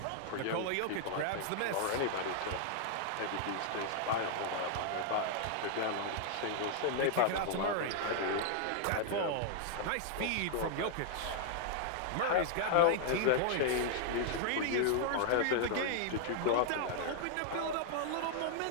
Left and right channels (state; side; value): different; both; correlation -0.01